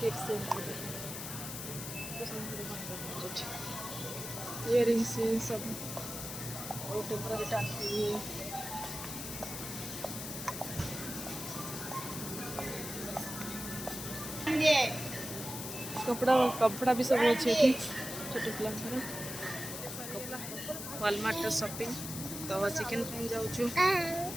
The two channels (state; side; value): noise; left; hiss, 7 dB below the sound